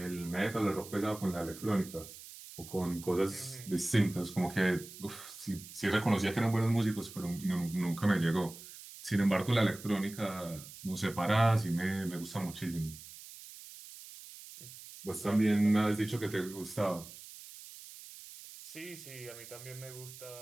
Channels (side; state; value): right; noise; hiss, 15 dB below the sound